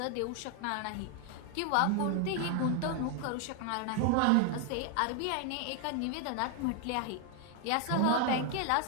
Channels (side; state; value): both; different; correlation 0.01